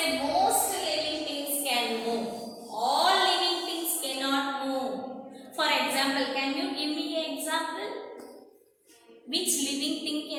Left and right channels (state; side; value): identical; both; correlation 1.00